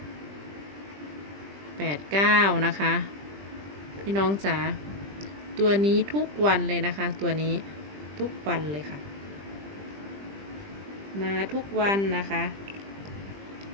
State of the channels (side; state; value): left; late; 20 ms